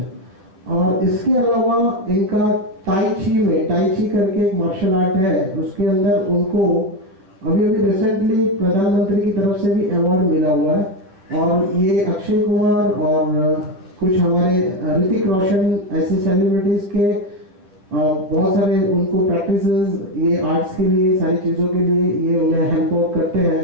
और इसके अलावा इनका टाई ची करके एक मार्शल आर्ट है, उसके अंदर उनको अभी रिसेंटली प्रधानमंत्री की तरफ से भी अवार्ड मिला हुआ है। और ये अक्षय कुमार और कुछ हमारे ऋतिक रोशन ऐसे सेलिब्रिटीज के बहुत सारे उनको प्रैक्टिसेस ये आर्ट्स के लिए, सारी चीज़ों के लिए ये उन्हें हेल्प आउट करते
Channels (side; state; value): left; late; 10 ms